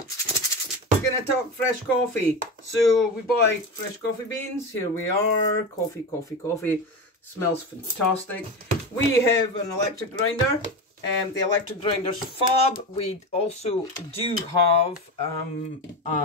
going to talk fresh coffee. So we buy fresh coffee beans. Here we are. Coffee. Smells fantastic. We have an electric grinder. The electric grinder's fab. We also do have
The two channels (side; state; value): both; normal; correlation 0.22